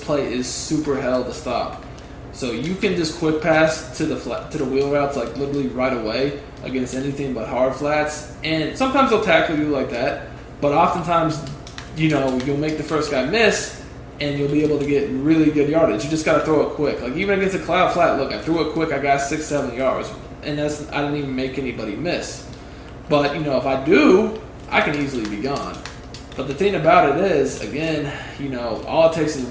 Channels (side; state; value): both; identical; correlation 1.00